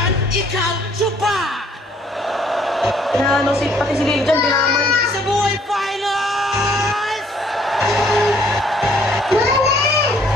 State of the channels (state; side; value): normal; both; correlation 0.63